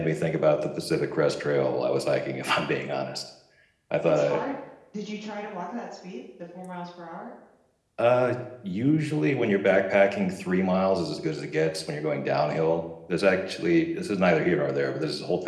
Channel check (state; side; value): identical; both; correlation 1.00